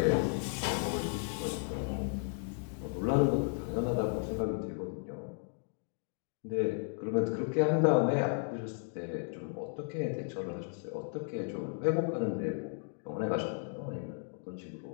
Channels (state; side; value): silent; right; 55 dB below the other